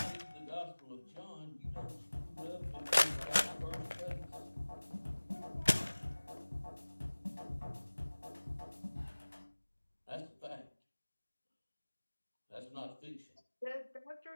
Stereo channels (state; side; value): inverted; both; correlation -1.00